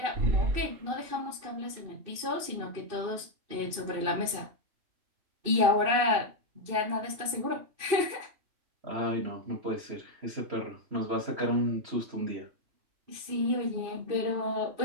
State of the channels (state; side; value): late; left; 2.7 ms